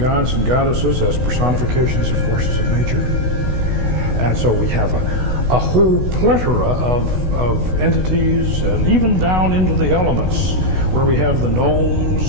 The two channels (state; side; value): late; left; 16 ms